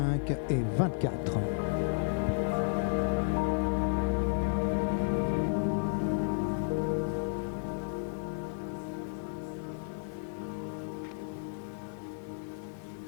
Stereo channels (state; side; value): silent; right; digital silence